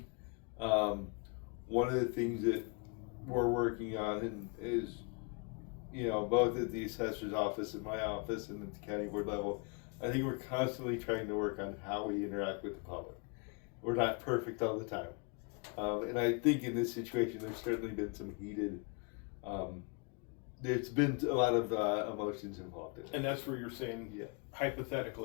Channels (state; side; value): quieter; right; 33.9 dB